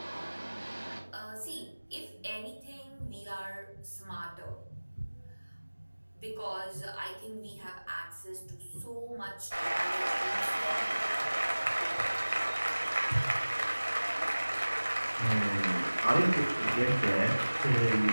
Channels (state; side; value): inverted; both; correlation -1.00